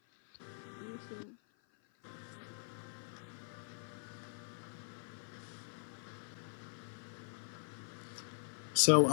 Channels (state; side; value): silent; right; 50 dB below the other